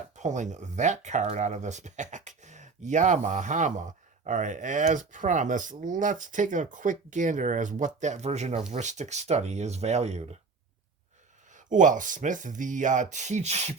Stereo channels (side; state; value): left; quieter; 4.5 dB